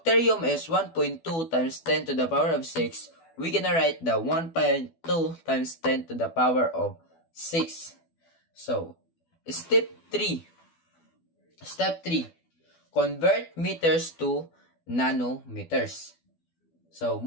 is 1.2 times 10 to the power of 6. We're gonna write the 1.2 times 10 to the power of 6. So, step 3. Convert meters to nanometers. So,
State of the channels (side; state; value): right; late; 12 ms